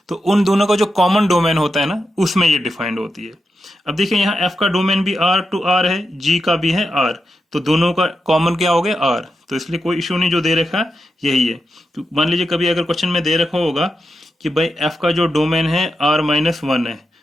तो उन दोनों का जो कॉमन डोमेन होता है ना, उसमें ये डिफाइंड होती है। अब देखिए यहाँ f का डोमेन भी r टू r है, g का भी है r, तो दोनों का कॉमन क्या हो गया r, तो इसलिए कोई इश्यू नहीं, जो दे रखा यही है। तो मान लीजिए कभी अगर क्वेश्चन में दे रखा होगा कि भाई f का जो डोमेन है r-1 है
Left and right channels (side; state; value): both; normal; correlation 0.87